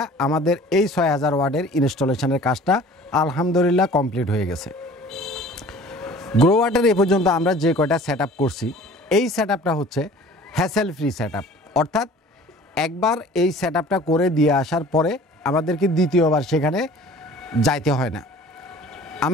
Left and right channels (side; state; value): both; normal; correlation 0.47